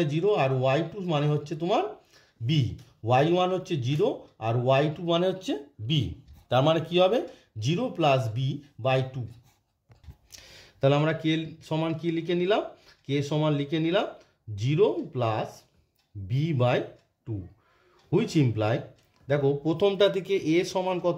0 আর y2 মানে হচ্ছে তোমার b। y1 হচ্ছে 0 আর y2 মানে হচ্ছে b, তার মানে কি হবে 0 প্লাস b/2। তাহলে আমরা কে সমান কি লিখে নিলাম, কে সমান লিখে নিলাম 0 plus B by 2, which imply, দেখো প্রথমটা থেকে এ সমান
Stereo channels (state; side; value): identical; both; correlation 1.00